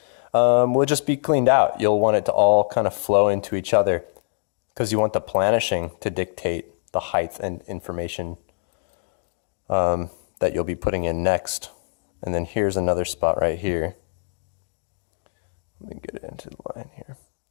will just be cleaned out. You'll want it to all kind of flow into each other because you want the planishing to dictate the height and information that you'll be putting in next. And then here's another spot right here. Let me get it into the line here.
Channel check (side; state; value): right; silent; 63 dB below the other